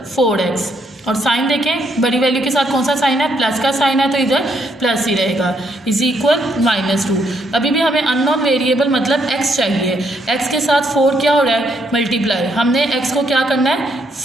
4x। और साइन देखें, बड़ी वैल्यू के साथ कौन सा साइन है, प्लस का साइन है, तो इधर प्लस ही रहेगा, = -2। अभी भी हमें अननोन वेरिएबल मतलब x चाहिए। x के साथ 4 क्या हो रहा है, मल्टीप्लाई। हमने x को क्या करना है,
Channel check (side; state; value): both; normal; correlation 0.74